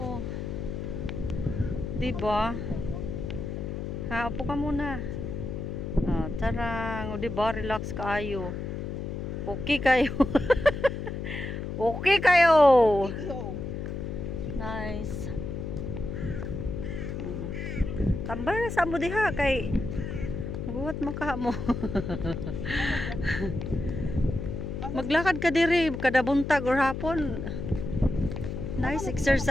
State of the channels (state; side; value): noise; left; hum, 5 dB below the sound